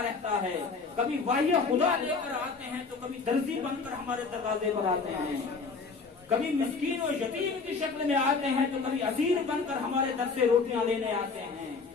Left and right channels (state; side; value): quieter; right; 4.6 dB